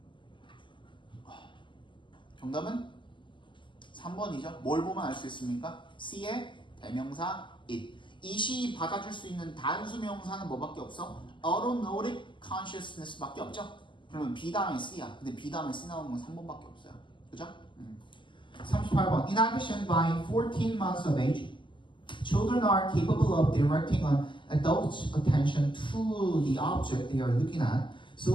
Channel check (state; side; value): late; right; 0.24 ms